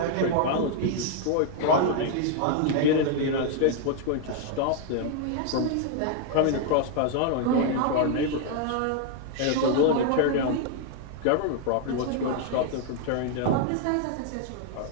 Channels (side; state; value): both; different; correlation 0.00